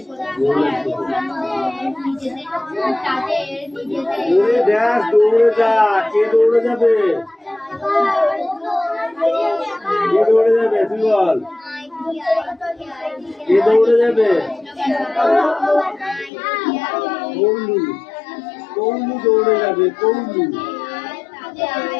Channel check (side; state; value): right; drops out; at 16.3 s